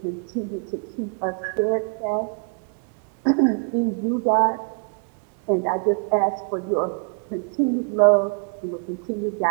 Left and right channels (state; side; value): quieter; left; 39.5 dB